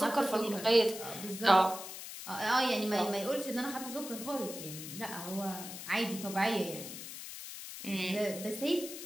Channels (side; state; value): left; noise; hiss, 10 dB below the sound